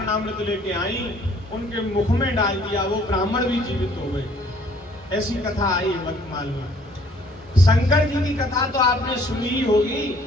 लेके आई, उनके मुख में डाल दिया, वो ब्राह्मण भी जीवित हो गए। ऐसी कथा आई वर्तमान में। शंकर जी की कथा तो आपने सुनी ही होगी।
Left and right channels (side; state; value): both; normal; correlation 0.59